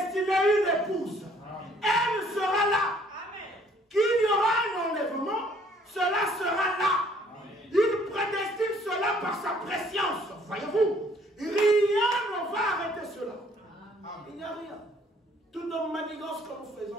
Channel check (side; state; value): both; normal; correlation 0.61